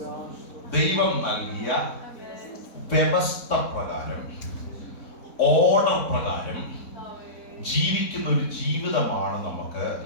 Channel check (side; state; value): right; late; 3.6 ms